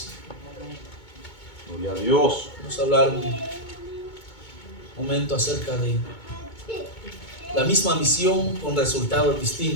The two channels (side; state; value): right; late; 2.2 ms